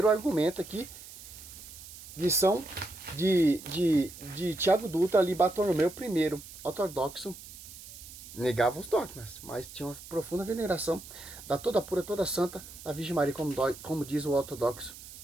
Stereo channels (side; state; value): right; noise; hiss, 16 dB below the sound